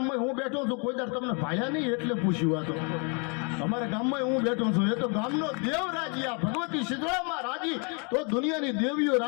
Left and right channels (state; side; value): quieter; right; 35.6 dB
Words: હું બેઠો છું, કોઈ દર તમને ભાયા નહીં એટલે પૂછ્યું. આ તો અમારા ગામમાં હું બેઠો છું, એ તો ગામનો દેવ રાજી, આ ભગવતી શીતળામાં રાજી, તો દુનિયાની દેવીઓ